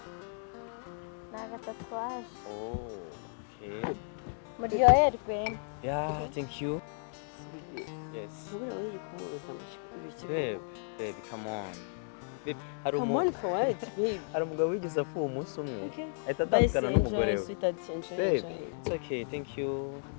Ni agatatuwaje. Oh, okay. Muryoherwe. Yeah, thank you. Yes. Ntubura uri kumubuza ibiki. Babe, come on. Babe, Come on for what, babe? hari umugabo wigeze apfuye umunsi umwe. Okay. Ahita Bye, atandukana n'umugore enjoy, we. sweetheart, enjoy. Babe, it's okay, thank you.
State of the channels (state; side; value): silent; right; digital silence